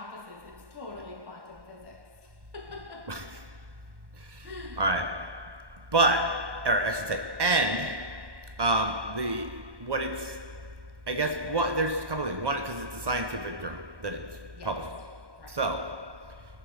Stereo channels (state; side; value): late; left; 1.1 ms